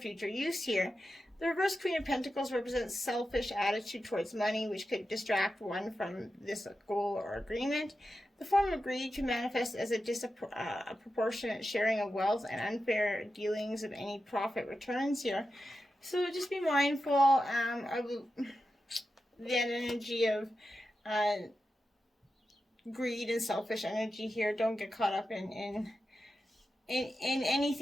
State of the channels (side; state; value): both; normal; correlation 0.91